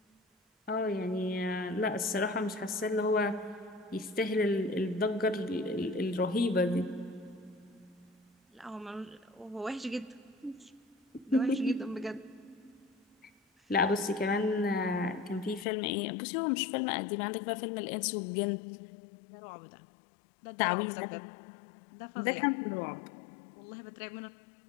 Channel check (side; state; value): right; drops out; at 15.7 s